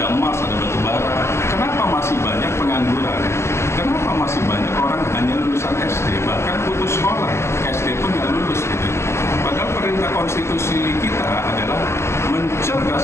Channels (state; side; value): late; right; 0.13 ms